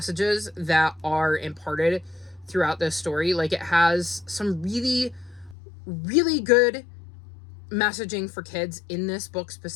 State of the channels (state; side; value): drops out; right; at 5.6 s